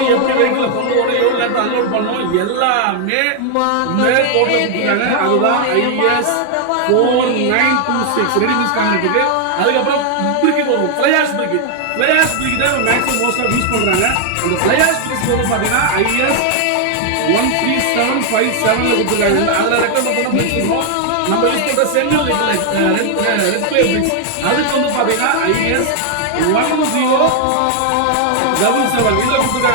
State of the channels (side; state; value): both; different; correlation 0.00